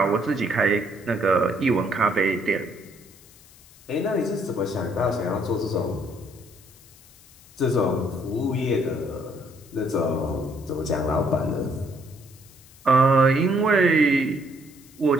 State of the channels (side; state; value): left; noise; hiss, 25 dB below the sound